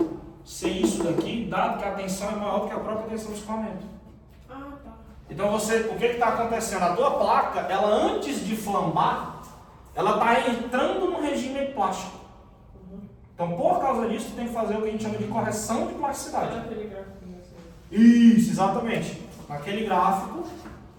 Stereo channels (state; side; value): identical; both; correlation 1.00